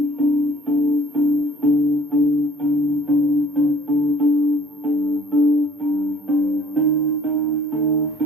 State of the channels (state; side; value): normal; both; correlation 0.54